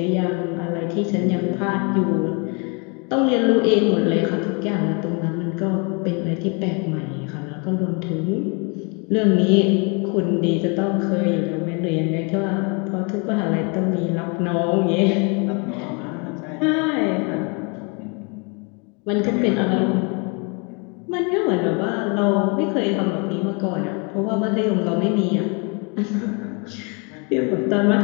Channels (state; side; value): quieter; right; 33.4 dB